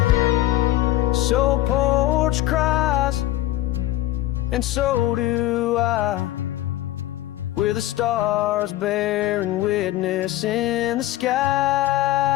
So porch cries, and so do I, with the stars bearing witness in the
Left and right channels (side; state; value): right; quieter; 15.5 dB